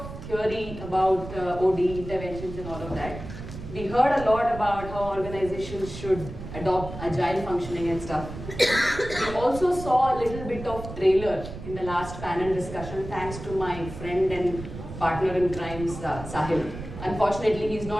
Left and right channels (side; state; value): right; noise; rumble, 11 dB below the sound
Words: theory about OD interventions and all of that. We heard a lot about how organizations should adopt agile functioning and stuff. We also saw a little bit of trailer in the last panel discussion thanks to my friend and partner in crime, Sahil. Unfortunately, he's